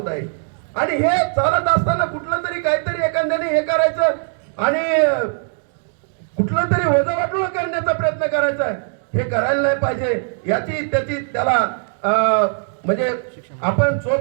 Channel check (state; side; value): silent; left; digital silence